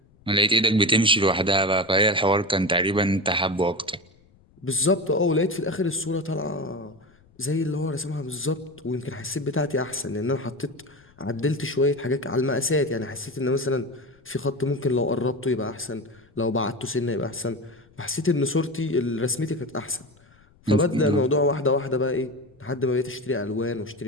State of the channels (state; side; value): noise; left; rumble, 30 dB below the sound